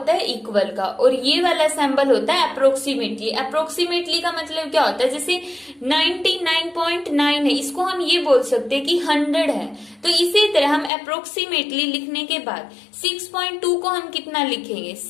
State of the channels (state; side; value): drops out; right; at 10.9 s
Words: है, इक्वल का, और ये वाला सिंबल होता है अप्रोक्सीमेटली। अप्रोक्सीमेटली का मतलब क्या होता है, जैसे 99.9 है, इसको हम ये बोल सकते हैं कि 100 है, तो इसी तरह हम अप्रोक्सीमेटली लिखने के बाद 6.2 को हम कितना लिखेंगे,